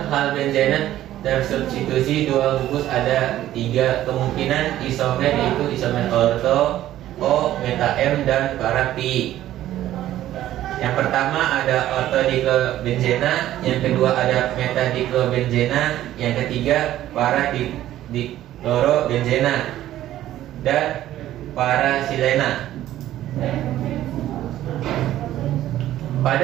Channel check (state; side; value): quieter; left; 13.3 dB